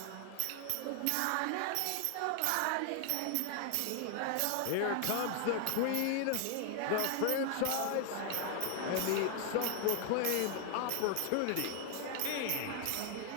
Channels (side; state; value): both; different; correlation 0.00